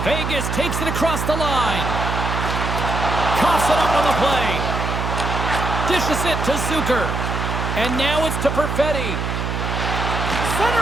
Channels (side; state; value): right; noise; hum, 2 dB below the sound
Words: Vegas takes it across the line. Coughs it up on the play. Dishes it to Zucker. And now it's to Perfetti.